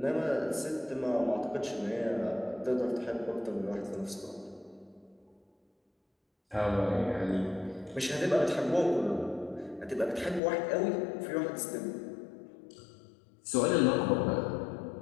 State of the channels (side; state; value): right; drops out; at 10.4 s